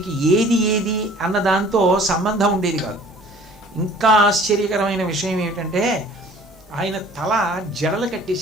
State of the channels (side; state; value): both; normal; correlation 0.50